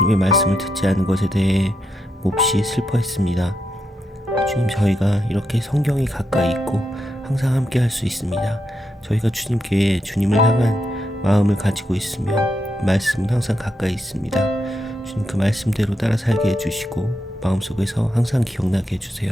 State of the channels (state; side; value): normal; both; correlation 0.83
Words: 말씀을 듣지 않은 것에 대해 몹시 슬퍼했습니다. 주님, 저희가 이렇게 성경이 가까이 있고 항상 함께 할 수 있습니다. 저희가 주님께 주님을 향한 마음을 가지고 있으면 말씀은 항상 가까이 있습니다. 주님, 그 말씀대로 따라 살게 해주시고 마음속에서 항상 기억나게 해주세요.